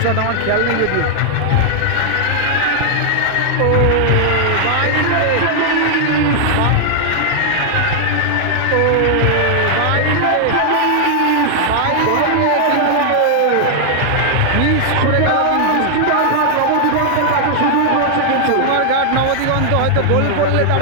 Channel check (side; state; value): both; different; correlation 0.00